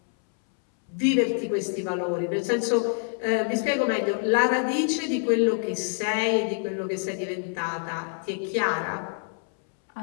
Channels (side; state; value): right; silent; 61 dB below the other